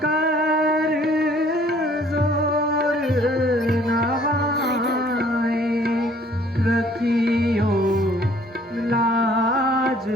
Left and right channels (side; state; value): both; normal; correlation 0.58